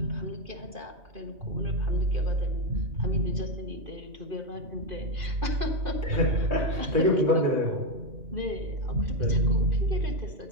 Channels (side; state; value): left; late; 2.5 ms